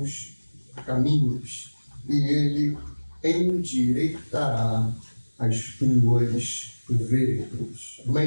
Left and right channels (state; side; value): inverted; both; correlation -1.00